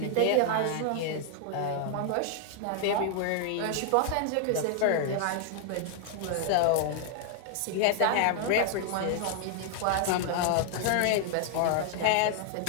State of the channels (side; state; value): both; different; correlation 0.00